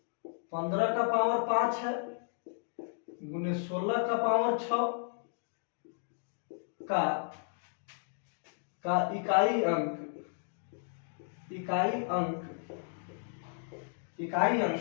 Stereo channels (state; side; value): silent; right; digital silence